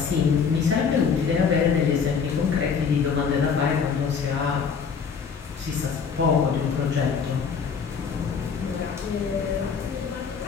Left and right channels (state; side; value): quieter; right; 6.1 dB